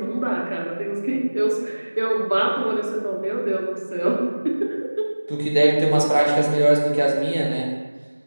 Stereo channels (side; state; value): both; inverted; correlation -1.00